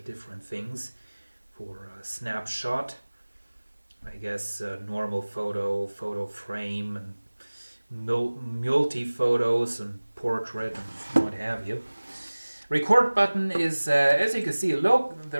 different things for snapshot. I guess normal photo, photo frame, and multi-photos and portrait and what have you. Record button is, as you can see,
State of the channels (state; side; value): inverted; both; correlation -1.00